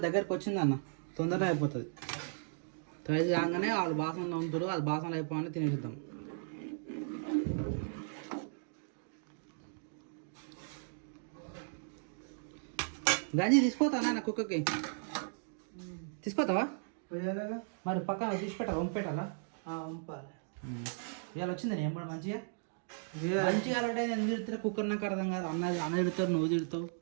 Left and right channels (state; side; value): silent; left; digital silence